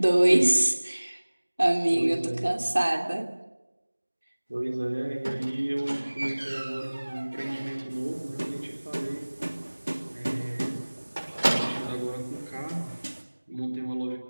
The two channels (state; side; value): inverted; both; correlation -1.00